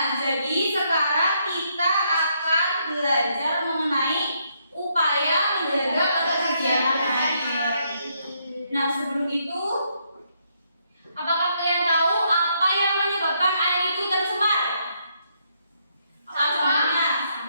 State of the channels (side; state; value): both; inverted; correlation -0.75